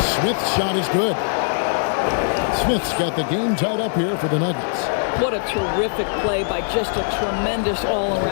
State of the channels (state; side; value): silent; right; 57 dB below the other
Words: Smith's shot is good. Smith's got the game tied up here for the Nuggets. What a terrific play by just a tremendous